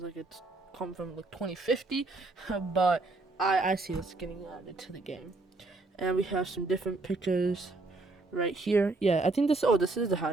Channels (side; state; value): left; quieter; 3.3 dB